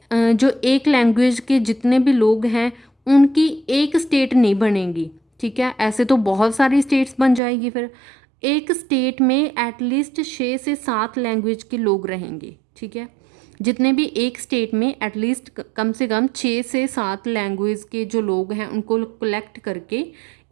जो एक लैंग्वेज के जितने भी लोग हैं उनकी एक स्टेट नहीं बनेगी, ठीक है। ऐसे तो बहुत सारी स्टेट्स बन जाएगी, फिर एक स्टेट में एटलीस्ट 6 से 7 लैंग्वेज के लोग रहेंगे, ठीक है। जितने भी एक स्टेट में एटलीस्ट कम से कम 6 से 7 लैंग्वेज के जो लोग हैं उनको कलेक्ट करके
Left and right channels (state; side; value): drops out; left; at 7.4 s